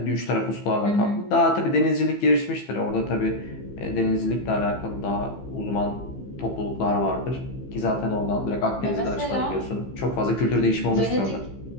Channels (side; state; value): right; late; 15 ms